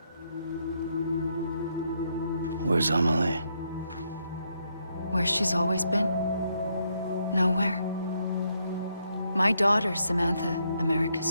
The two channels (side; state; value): both; inverted; correlation -0.76